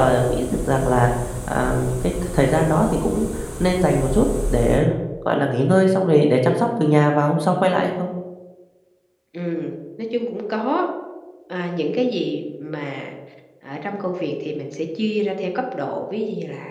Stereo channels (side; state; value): both; identical; correlation 1.00